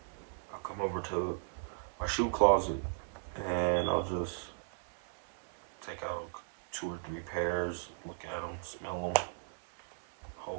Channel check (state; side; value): silent; left; digital silence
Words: come over to my shoe closet and I'll just take out 2 or 3 pairs, look at them, smell them,